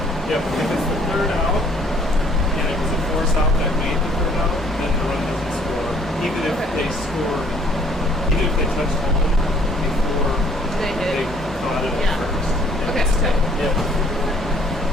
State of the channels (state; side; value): normal; both; correlation 0.60